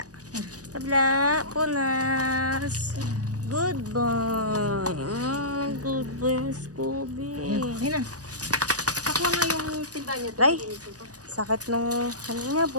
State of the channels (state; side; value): late; left; 0.67 ms